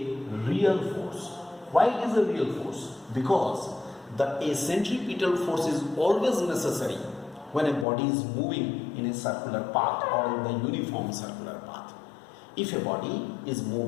real force. Why it is a real force? Because a centripetal force is always necessary when a body is moving in a circular path or in the uniform circular path. If a body is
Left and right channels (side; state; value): right; drops out; at 7.9 s